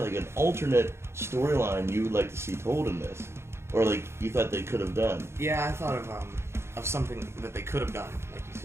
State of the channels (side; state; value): left; late; 0.12 ms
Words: an alternate storyline you would like to see told in this, or like you thought they could have done. Yeah, I thought of something that they could have done, like you